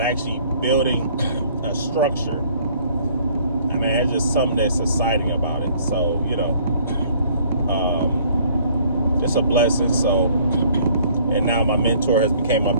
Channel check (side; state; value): both; inverted; correlation -0.58